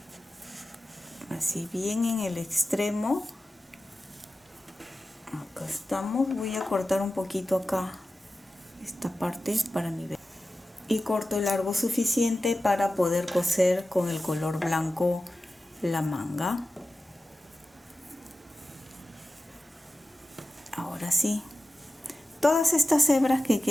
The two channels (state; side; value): normal; both; correlation 0.95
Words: así bien en el extremo. Acá estamos. Voy a cortar un poquito acá esta parte para mi verde, y corto el largo suficiente para poder coser con el color blanco la manga. Ahora sí, todas estas hebras que